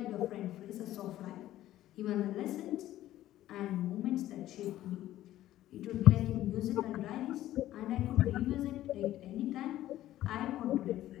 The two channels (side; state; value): right; quieter; 13.9 dB